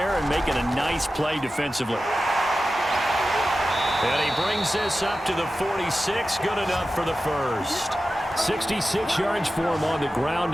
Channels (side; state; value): both; normal; correlation 0.94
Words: and making a nice play defensively. And he brings this up to the 46. Good enough for the first. 66 yards for him on the ground